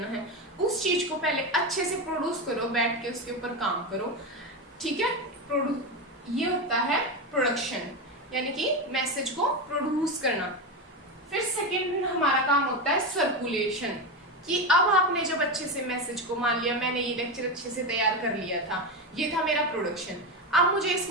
है, उस चीज को पहले अच्छे से प्रोड्यूस करो, बैठ के उसके ऊपर काम करो, ठीक है। ये होता है प्रोडक्शन, यानी कि मैसेज को प्रोड्यूस करना। फिर सेकेंड हमारा काम होता है सर्कुलेशन, कि अब आपने जब अच्छे से मैसेज को, मान लिया मैंने ये लेक्चर अच्छे से तैयार कर लिया था, ये था मेरा प्रोडक्शन, अब मुझे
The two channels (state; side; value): normal; both; correlation 0.16